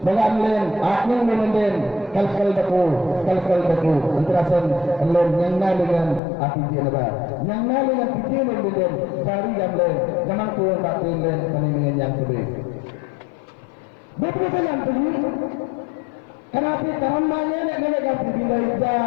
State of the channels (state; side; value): drops out; right; at 6.2 s